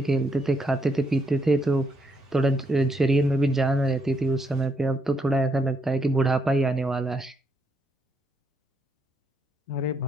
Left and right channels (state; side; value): normal; both; correlation 0.76